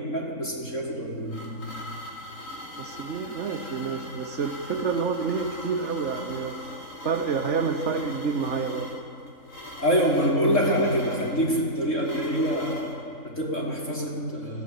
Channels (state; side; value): late; right; 3.7 ms